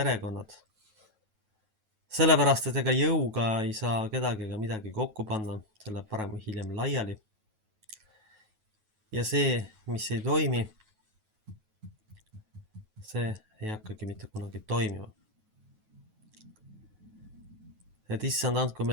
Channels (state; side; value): late; left; 9.3 ms